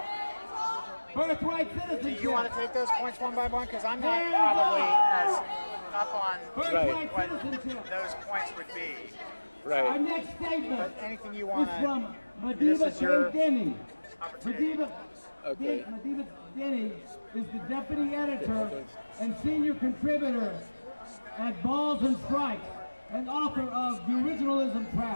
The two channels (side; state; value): both; inverted; correlation -1.00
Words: Birthright Citizenship. Do you want to take those points one by one? Because I'm not probably as up on what those points would be. Our Right. next statement But anything you want is from to, this Madiba is your Denny. opportunity. Okay. Madiba Denny is the deputy editor and senior contributor at Balls and Strikes, and author of The Originalism